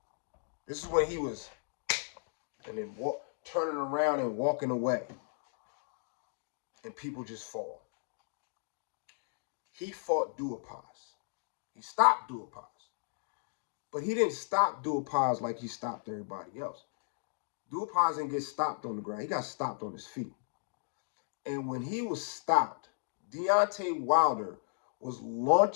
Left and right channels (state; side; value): silent; right; digital silence